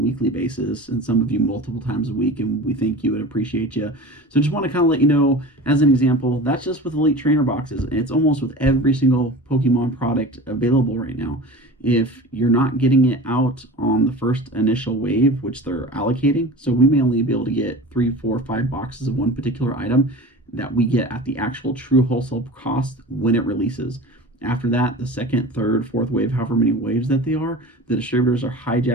basis, and some of you multiple times a week, and we thank you and appreciate you. So just want to kind of let you know, as an example, that's just with Elite Trainer boxes. It's almost with every single Pokemon product available right now. If you're not getting it out on the first initial wave, which they're allocating, so we may only be able to get 3, 4, 5 boxes of one particular item that we get at the actual true wholesale cost when it releases. After that, the second, third, fourth wave, however many waves that they are, the distributors are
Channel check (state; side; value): normal; both; correlation 0.35